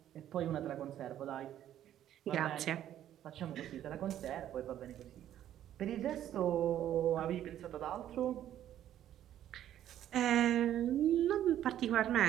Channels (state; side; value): quieter; left; 11.5 dB